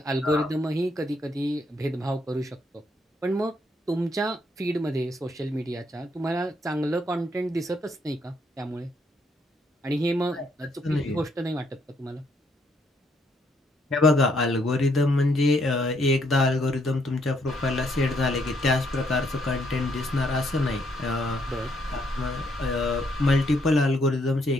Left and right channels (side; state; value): both; normal; correlation 0.72